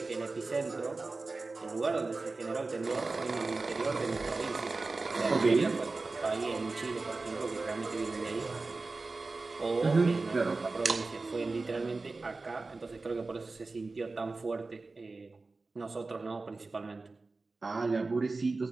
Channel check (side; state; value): left; quieter; 3.6 dB